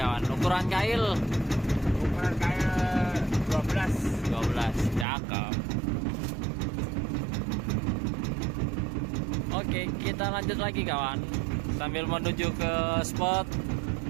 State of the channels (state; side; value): drops out; left; at 5.1 s